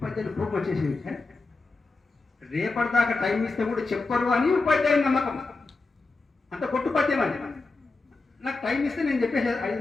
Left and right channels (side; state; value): right; quieter; 3.7 dB